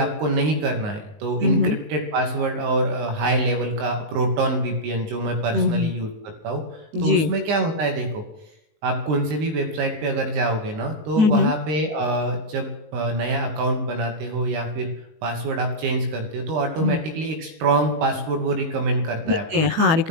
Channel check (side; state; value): left; late; 19 ms